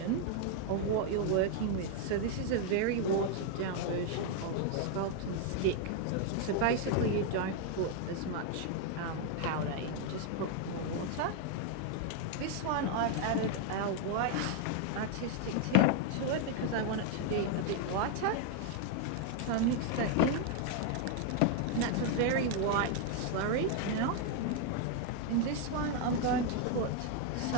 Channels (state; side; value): different; both; correlation 0.00